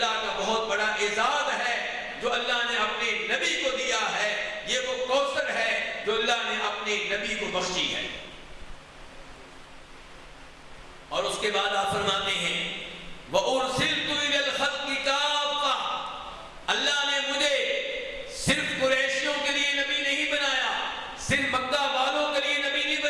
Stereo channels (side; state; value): both; identical; correlation 1.00